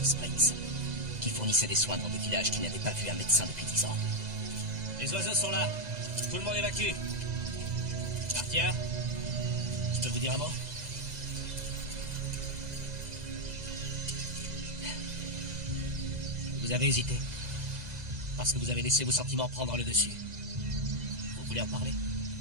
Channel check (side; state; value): left; late; 2.0 ms